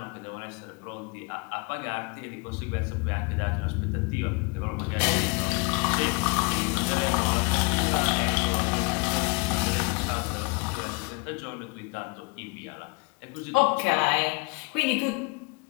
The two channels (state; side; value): quieter; right; 30.3 dB